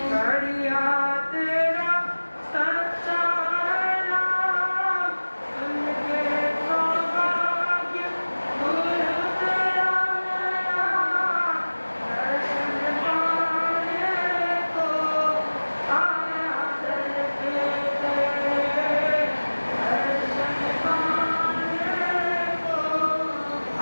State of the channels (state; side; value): inverted; both; correlation -1.00